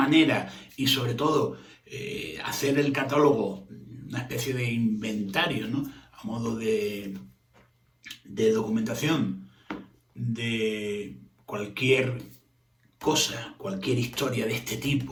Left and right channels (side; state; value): both; identical; correlation 1.00